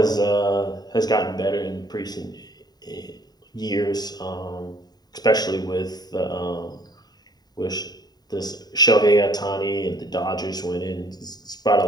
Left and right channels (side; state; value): right; late; 0.20 ms